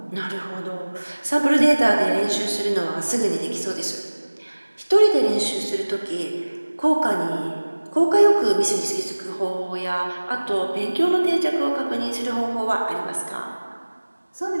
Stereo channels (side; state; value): both; inverted; correlation -1.00